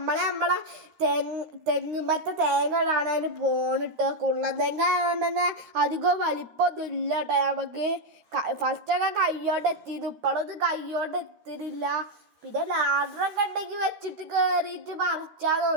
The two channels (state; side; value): late; left; 13 ms